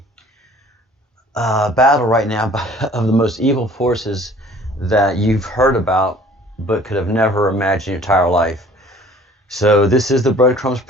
battle right now of the most evil forces that you've heard about but could have never imagined your entire life. So this is the Breadcrumbs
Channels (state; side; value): normal; both; correlation 0.52